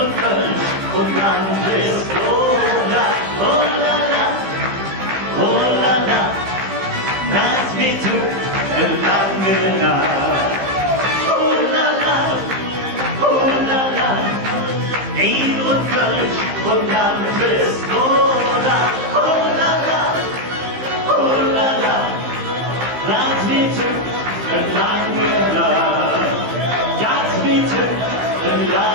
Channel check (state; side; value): late; left; 15 ms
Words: Kölsch und dann bist du da, oh la la, oh la la, das wird lange Nacht. Oh la la, oh la la, Eid und Kölsch und dann bist du da, oh la la, oh la la, das wird lange Nacht. Das wird